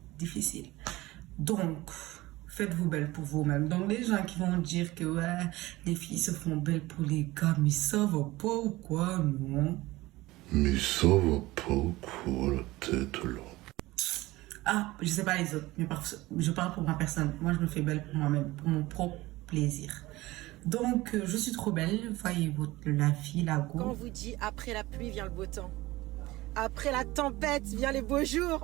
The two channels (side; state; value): left; quieter; 19.1 dB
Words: Difficile. Donc, faites-vous belle pour vous-même. Donc, les gens qui vont dire que ouais, les filles se font belles pour les gars, mais ça va pas ou quoi, non? Mais ça va pas ou quoi, la tête là? Ah, je sais pas les autres, mais je parle pour ma personne. Moi, je me fais belle pour moi-même, pour mon propre plaisir. Donc, je suis trop belle. Voyez la vie, la go. Quand on vous dit après la pluie vient le beau temps. Après la tempête vient les beaux